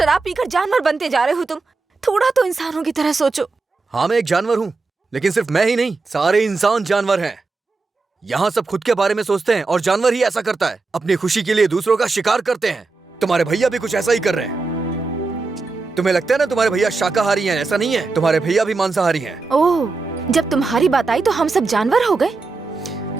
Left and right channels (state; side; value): quieter; left; 3.9 dB